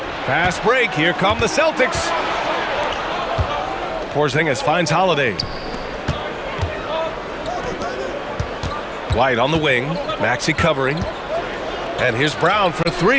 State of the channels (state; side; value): identical; both; correlation 1.00